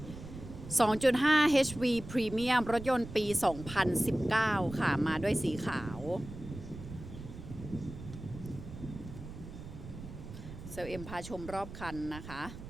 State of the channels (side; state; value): right; noise; rumble, 12 dB below the sound